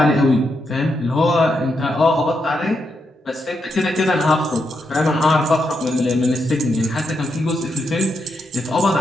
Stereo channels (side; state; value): both; normal; correlation 0.82